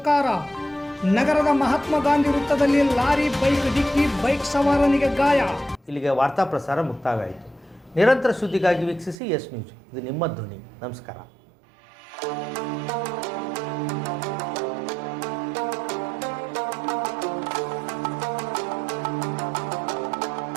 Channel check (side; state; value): left; drops out; at 9.2 s